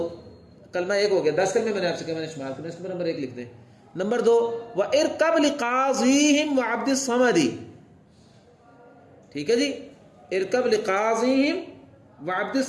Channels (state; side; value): identical; both; correlation 1.00